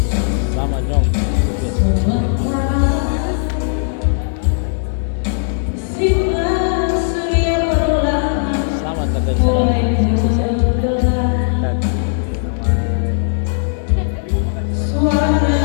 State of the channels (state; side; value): silent; right; digital silence